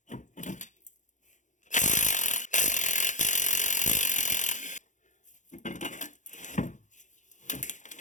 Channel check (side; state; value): right; late; 0.36 ms